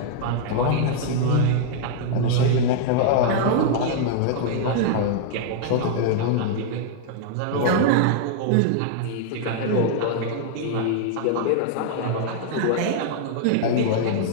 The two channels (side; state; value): both; different; correlation -0.01